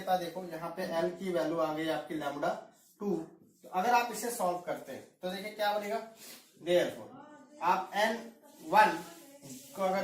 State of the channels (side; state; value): both; identical; correlation 1.00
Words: है देखो, यहाँ पे L की वैल्यू आ गई आपकी λ2। तो अगर आप इसे सॉल्व करते हैं तो देखिए क्या बनेगा। देयरफॉर आप n1 को